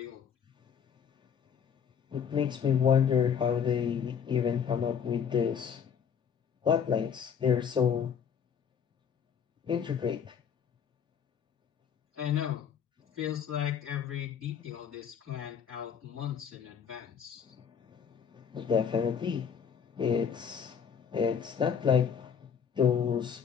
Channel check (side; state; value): right; quieter; 7.4 dB